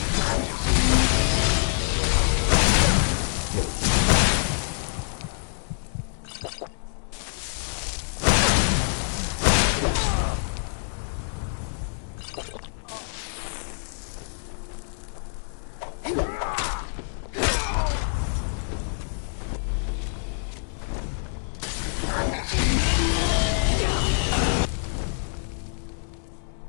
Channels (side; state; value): right; silent; digital silence